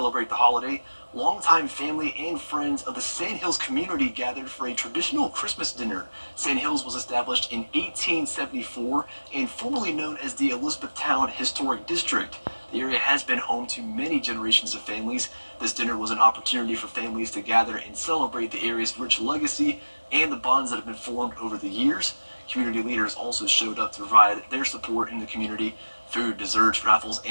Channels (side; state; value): both; inverted; correlation -1.00